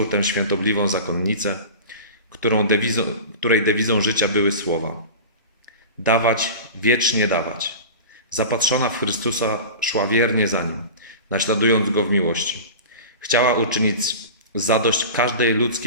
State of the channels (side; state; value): both; inverted; correlation -0.32